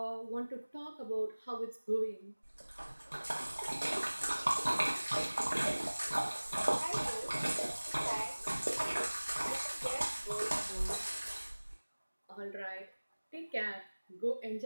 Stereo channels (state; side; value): inverted; both; correlation -1.00